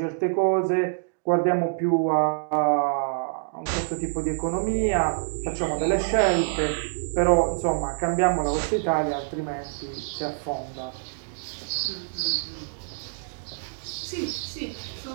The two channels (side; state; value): left; silent; digital silence